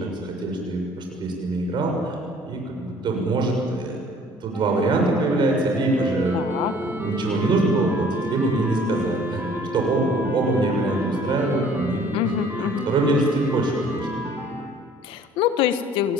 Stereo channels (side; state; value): both; normal; correlation 0.54